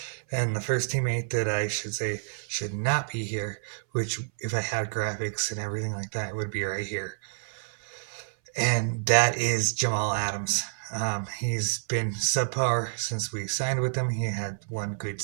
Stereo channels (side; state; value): left; silent; 59 dB below the other